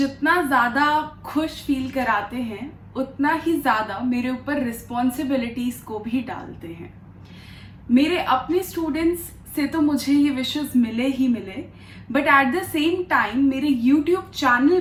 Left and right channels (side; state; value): both; identical; correlation 1.00